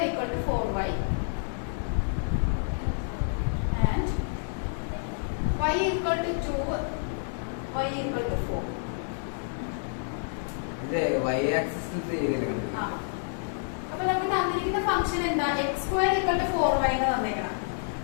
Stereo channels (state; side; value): silent; right; 59 dB below the other